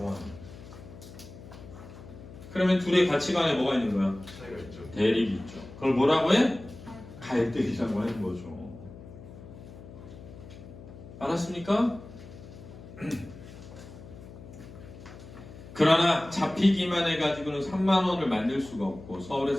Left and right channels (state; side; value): noise; left; hum, 16 dB below the sound